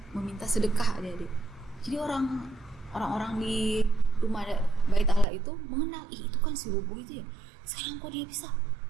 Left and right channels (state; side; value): drops out; left; at 5.2 s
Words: meminta sedekah adik-adik. Jadi orang-orang di rumah bait Allah itu mengenal, itu kan si lumpuh itu ya. Sekarang kok dia bisa